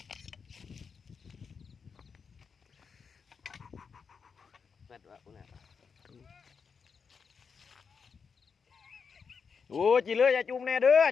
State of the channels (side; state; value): right; quieter; 5.8 dB